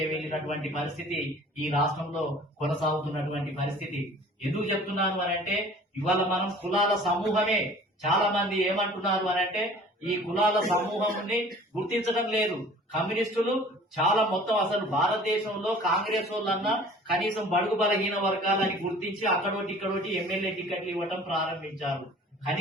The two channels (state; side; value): normal; both; correlation 0.48